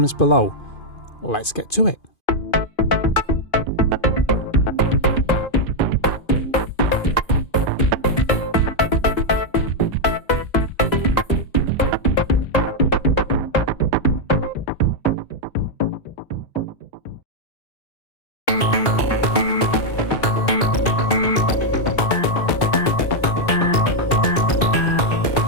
below. Let's get to it.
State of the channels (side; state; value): right; late; 2.5 ms